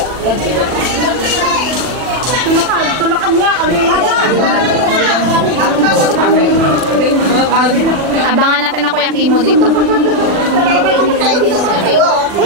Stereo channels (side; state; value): left; late; 40 ms